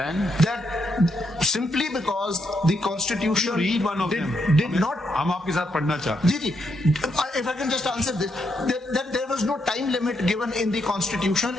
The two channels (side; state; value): both; normal; correlation 0.79